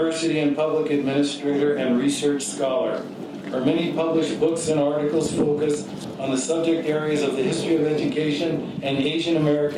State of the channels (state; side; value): identical; both; correlation 1.00